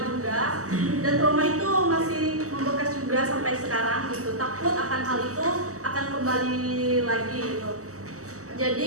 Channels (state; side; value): late; left; 0.66 ms